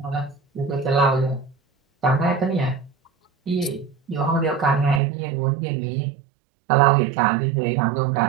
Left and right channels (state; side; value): drops out; left; at 5.0 s